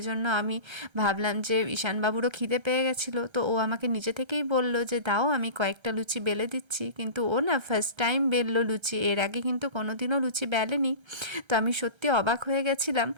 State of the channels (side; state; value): left; late; 1.3 ms